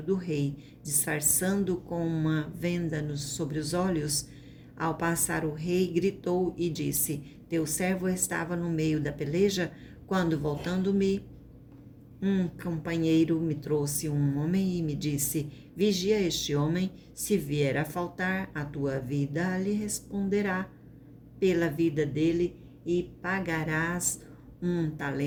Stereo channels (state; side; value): identical; both; correlation 1.00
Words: do rei, disfarçando com uma venda sobre os olhos. Ao passar o rei, gritou e disse: Teu servo estava no meio da peleja, quando, voltando-me, um companheiro me trouxe um homem e me disse: Vigia este homem, se vier a faltar a tua vida, lhe responderá pela vida dele e pagarás 1